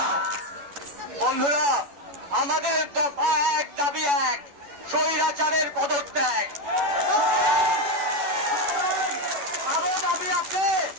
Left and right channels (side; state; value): left; late; 11 ms